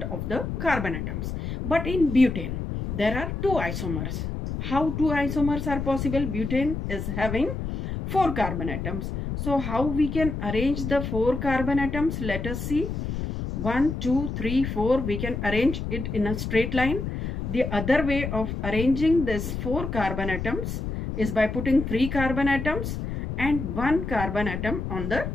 of the carbon atoms. But in butane, there are 2 isomers. How 2 isomers are possible? Butane is having 4 carbon atoms. So how we can arrange the 4 carbon atoms? Let us see. 1, 2, 3, 4. We can arrange it in a straight line. The other way of arranging this 4 carbon atoms is by putting 3 carbon atoms and 1 carbon atom on the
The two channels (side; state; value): left; noise; rumble, 4 dB below the sound